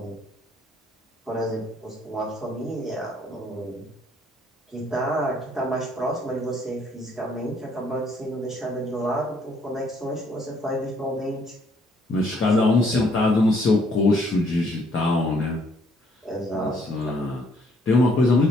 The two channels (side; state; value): both; normal; correlation 0.66